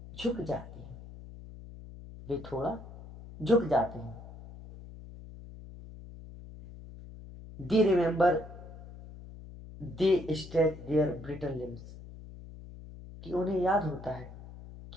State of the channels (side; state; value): left; noise; hum, 15 dB below the sound